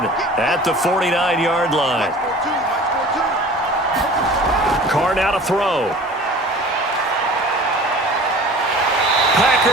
at the 49-yard line. Carr now to throw.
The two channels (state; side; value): normal; both; correlation 0.43